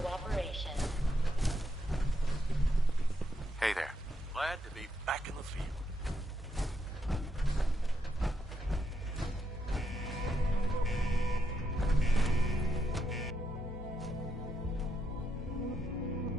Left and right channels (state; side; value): normal; both; correlation 0.80